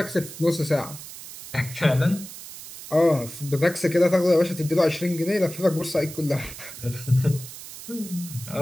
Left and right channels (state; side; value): noise; right; hiss, 13 dB below the sound